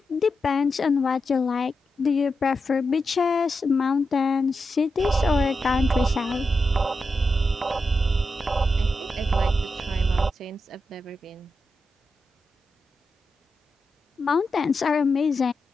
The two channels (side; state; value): both; normal; correlation 0.88